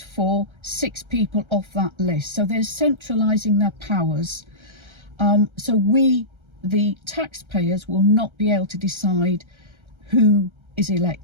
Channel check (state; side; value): late; left; 1.3 ms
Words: 6 people off that list. So they're centralising their powers. So we, the taxpayers, will not be able to decide who is